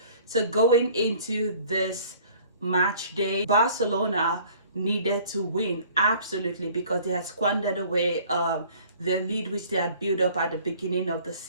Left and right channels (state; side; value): inverted; both; correlation -0.52